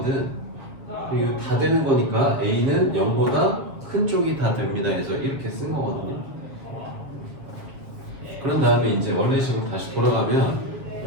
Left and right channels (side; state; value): left; late; 7.4 ms